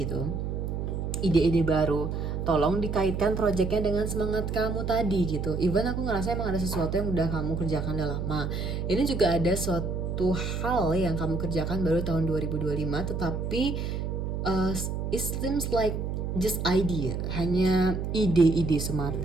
gitu, ide-ide baru, tolong dikaitkan proyeknya dengan semangat kamu tadi gitu. Even aku ngerasa emang ada sesuatu yang udah kamu kerjakan udah lama. Ini juga ada suatu hal yang kamu kerjakan baru tahun 2025, tetapi it seems like just idea, hanya ide-ide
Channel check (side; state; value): right; noise; hum, 3 dB below the sound